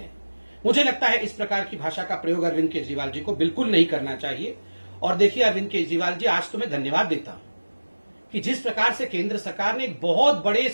मुझे लगता है इस प्रकार की भाषा का प्रयोग अरविंद केजरीवाल जी को बिल्कुल नहीं करना चाहिए। और देखिए अरविंद केजरीवाल जी, आज तो मैं धन्यवाद देता हूं कि जिस प्रकार से केंद्र सरकार ने एक बहुत बड़े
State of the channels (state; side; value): inverted; both; correlation -1.00